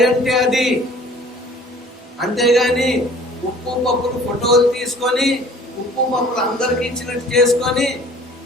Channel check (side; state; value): both; normal; correlation 0.50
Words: అంటే అది. అంతేగాని ఉప్పు పప్పులు ఫోటోలు తీసుకొని ఉప్పు పప్పులు అందరికి ఇచ్చినట్టు చేసుకొని